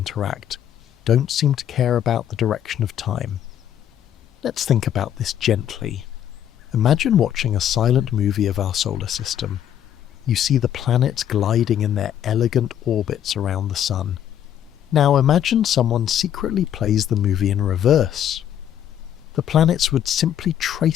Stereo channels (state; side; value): quieter; right; 10.2 dB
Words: don't seem to care about the direction of time. Let's think about this gently. Imagine watching a silent movie of our solar system. You see the planets gliding in their elegant orbits around the sun. Now imagine someone secretly plays the movie in reverse. The planets would simply